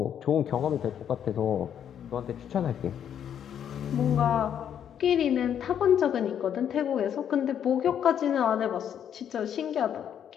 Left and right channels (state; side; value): quieter; right; 9.1 dB